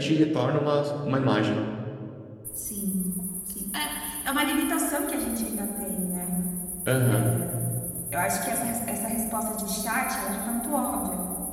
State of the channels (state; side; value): identical; both; correlation 1.00